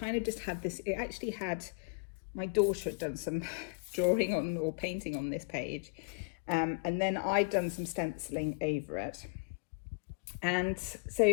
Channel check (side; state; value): right; quieter; 31.4 dB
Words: of just had this, it actually had, my daughter had done some drawing on or painting on this page. And then I'd done some stenciling over it. And so